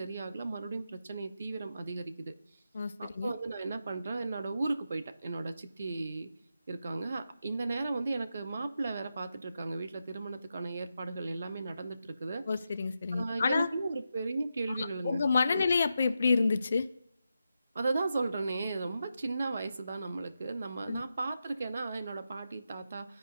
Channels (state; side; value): inverted; both; correlation -0.87